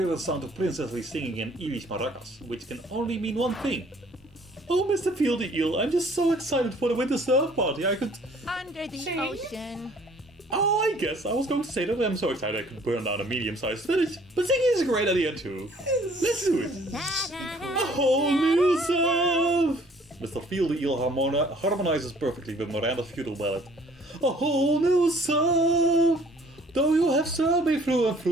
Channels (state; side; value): normal; both; correlation 0.57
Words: the sound of princessly singing in Irish maracas, which can only mean one thing. Oh, Mr. Fieldy Eel, I'm just so excited for the winter surf party, I could... Under the ocean. Oh, I guess I was going to say that I'm so excited I could burn down a medium-sized village, but singing is a great idea too. Let's do it! A whole new surf! Mr. Fieldy Eel harmonizes perfectly with Miranda's feudal ballad. A whole new surf! Though you have served me through and